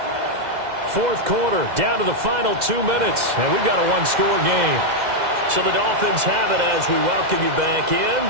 Fourth quarter, down to the final 2 minutes, and we've got a 1-score game. So the Dolphins have it as we welcome you back in.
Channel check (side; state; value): left; late; 2.0 ms